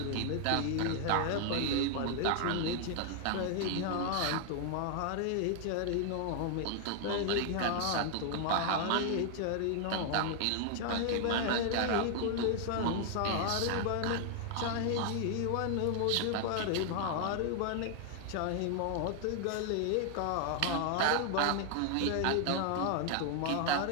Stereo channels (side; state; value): both; different; correlation 0.00